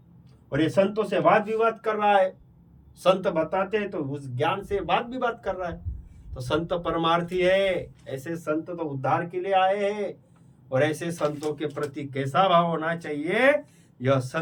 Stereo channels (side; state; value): both; identical; correlation 1.00